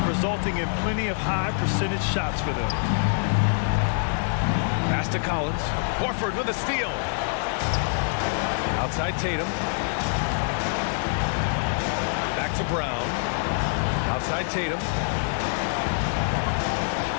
resulting in plenty of high percentage shots for them. Pass to Collins. Horford with a steal. Outside Tatum. Back to Brown. Outside Tatum.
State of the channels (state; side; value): silent; right; 58 dB below the other